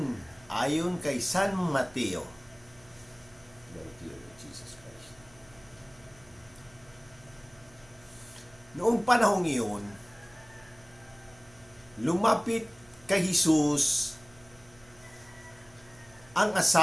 ayon kay San Mateo. Noong panahong iyon, lumapit kay Jesus ang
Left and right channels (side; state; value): right; noise; hum, 26 dB below the sound